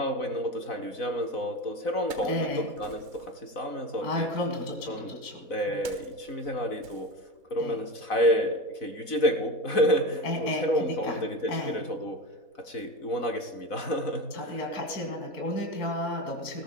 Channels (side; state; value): right; late; 4.0 ms